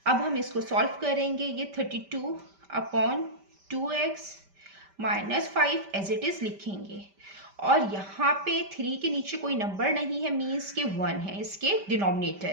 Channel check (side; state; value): left; late; 5.1 ms